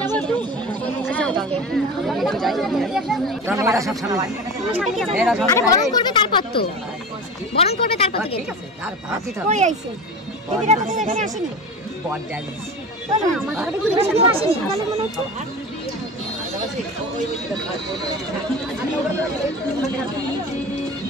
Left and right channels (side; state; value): both; normal; correlation 0.30